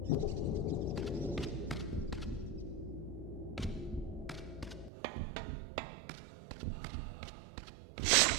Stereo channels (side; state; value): left; drops out; at 4.9 s